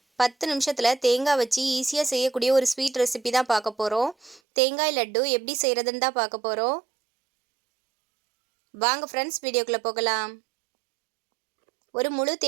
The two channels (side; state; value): left; drops out; at 4.4 s